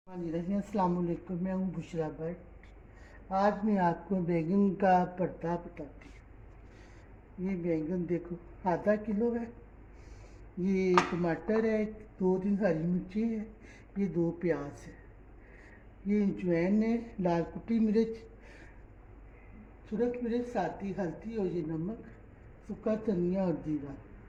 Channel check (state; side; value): identical; both; correlation 1.00